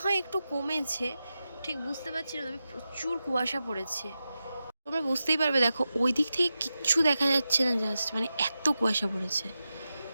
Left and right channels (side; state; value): both; inverted; correlation -0.91